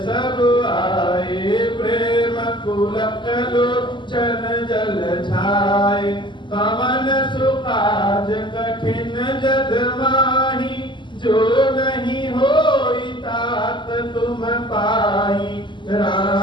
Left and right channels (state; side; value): late; right; 0.23 ms